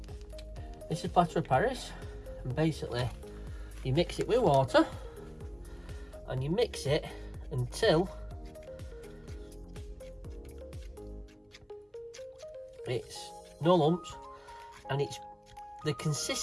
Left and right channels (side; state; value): both; identical; correlation 1.00